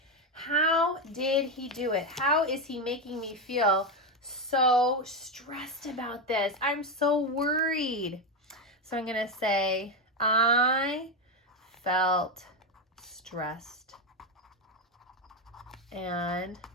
How did he do it? How is he making me feel so stressed about this? I'm so worried. So I'm going to say, I felt stressed and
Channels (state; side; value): normal; both; correlation 0.10